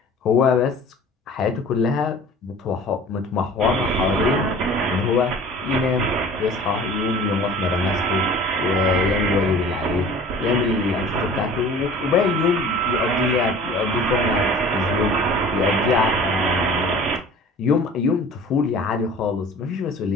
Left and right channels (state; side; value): normal; both; correlation 0.44